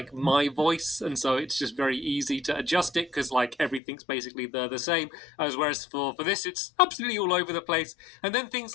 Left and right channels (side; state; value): right; drops out; at 3.8 s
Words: my voice, and so it's just very easy to adjust it because like everything's basically the same. Whereas for this, it's absolutely all over the place. And then things